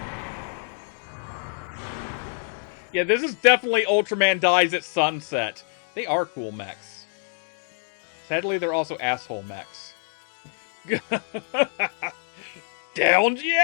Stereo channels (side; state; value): right; silent; 61 dB below the other